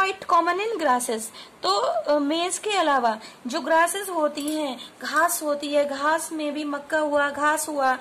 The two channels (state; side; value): identical; both; correlation 1.00